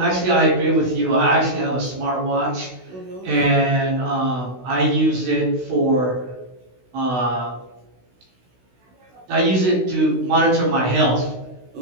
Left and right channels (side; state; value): left; late; 16 ms